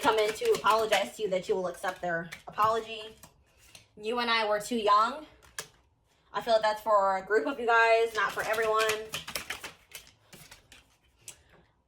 in to apologize to you, that you will accept their apology. You and I were too young. I feel like that's for a group of you guys, not for everyone.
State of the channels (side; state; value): both; identical; correlation 1.00